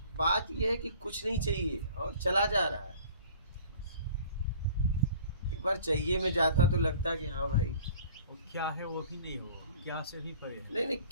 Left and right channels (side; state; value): both; inverted; correlation -0.48